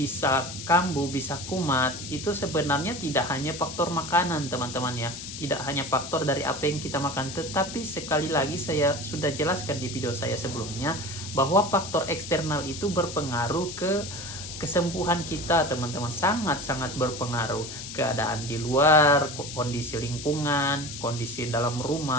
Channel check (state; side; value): noise; left; hiss, 9 dB below the sound